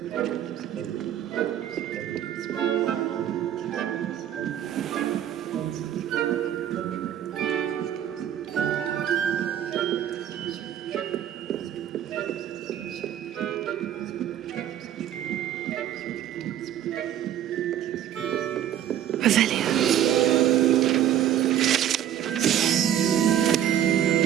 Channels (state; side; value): quieter; left; 10.7 dB